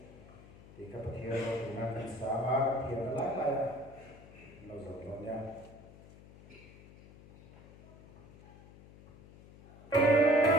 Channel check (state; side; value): noise; left; hum, 21 dB below the sound